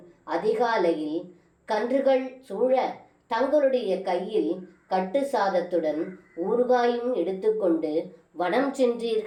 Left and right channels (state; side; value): identical; both; correlation 1.00